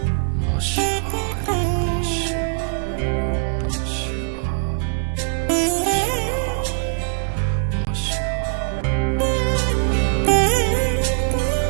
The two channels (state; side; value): silent; left; digital silence